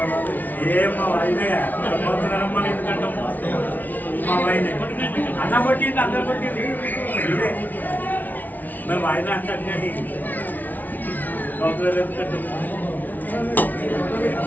మా వైద్య ఎందుకంటాం మా వైద్య అన్న కొట్టింది అందరు కొట్టింది ఇదే మేము వాయిదా అంటే కౌతులు ఎందుకంటాం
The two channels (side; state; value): right; late; 0.080 ms